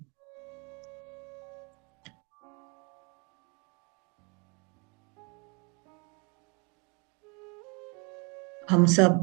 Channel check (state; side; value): quieter; left; 32.0 dB